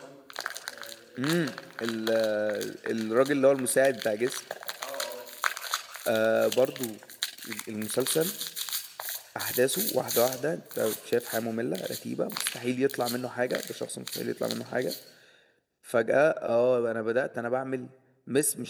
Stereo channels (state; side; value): identical; both; correlation 1.00